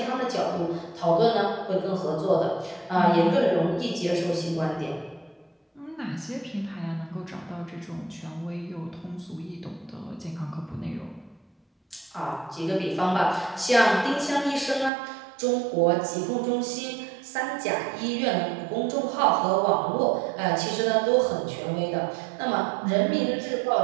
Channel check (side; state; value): left; drops out; at 14.9 s